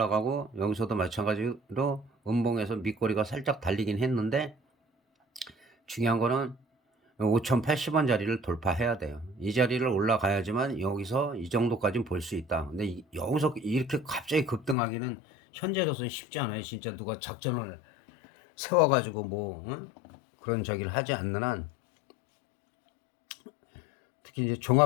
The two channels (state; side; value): drops out; right; at 14.8 s